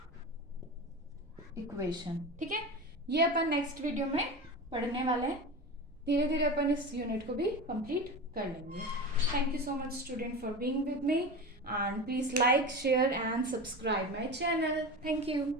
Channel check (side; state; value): right; noise; rumble, 25 dB below the sound